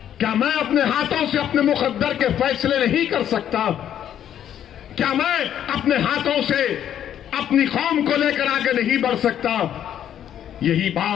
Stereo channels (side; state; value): right; quieter; 10.2 dB